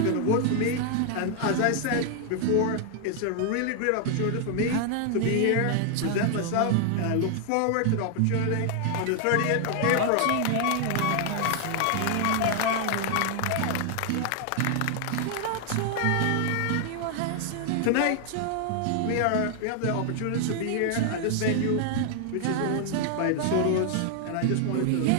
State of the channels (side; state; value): both; different; correlation 0.00